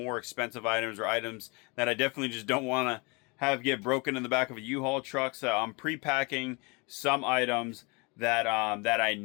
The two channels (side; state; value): right; quieter; 29.4 dB